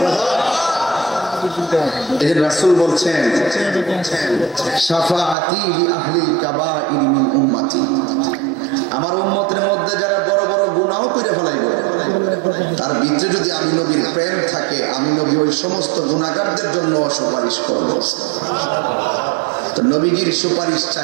এই যে রাসূল বলছেন শাফাআতি লি আহলিল কাবাইর মিন উম্মতি, আমার উম্মতের মধ্যে যারা বড় বড় গুনাহ করে ফেলাইব, তার ভিতরে যদি আমি নবীর প্রেম থাকে, আমি নবী ওই সমস্ত গুনাহগারদের জন্য সুপারিশ করব। তো নবীজির সুপারিশ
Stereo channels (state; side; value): drops out; left; at 5.4 s